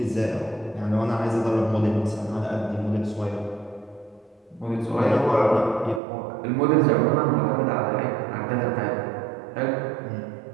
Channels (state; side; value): drops out; left; at 6.0 s